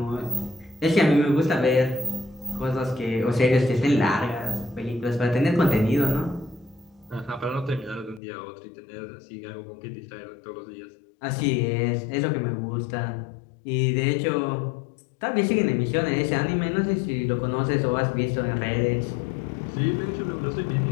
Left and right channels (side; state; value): right; drops out; at 8.2 s